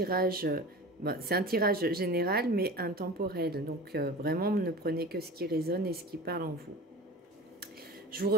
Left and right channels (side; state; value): both; normal; correlation 0.35